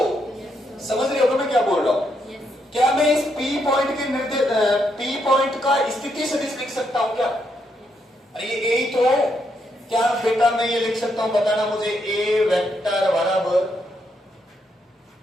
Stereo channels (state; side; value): normal; both; correlation 0.78